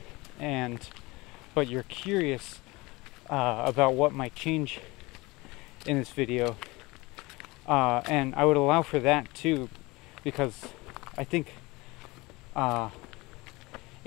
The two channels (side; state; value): right; quieter; 22.8 dB